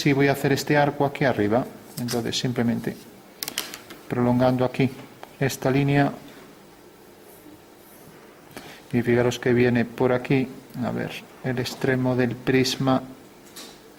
voy a hacer este arco aquí arriba. Entonces simplemente prolongando aquí esta línea y fijaros que viene por aquí, a ver, el extremo del prisma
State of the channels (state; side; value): identical; both; correlation 1.00